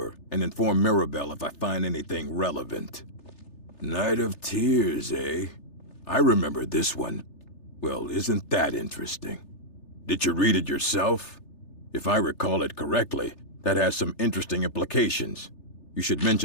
and inform Mirabelle if I find anything relevant. Night of Tears, eh? I remember this one. Well, isn't that interesting? Did you read it yourself? If I recall it correctly, that has some interesting implications. You should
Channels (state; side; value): late; right; 3.3 ms